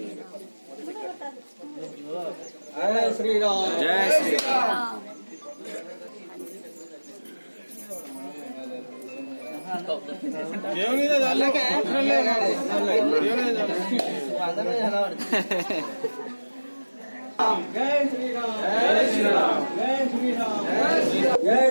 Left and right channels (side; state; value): both; inverted; correlation -1.00